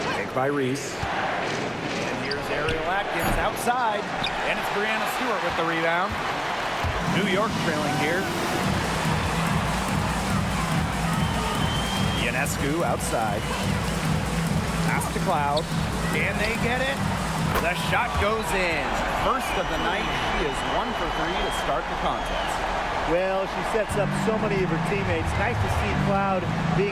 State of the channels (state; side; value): identical; both; correlation 1.00